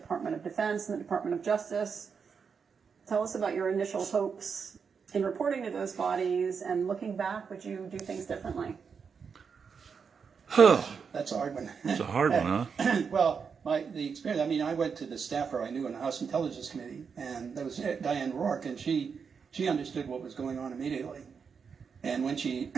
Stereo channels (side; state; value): left; quieter; 6.1 dB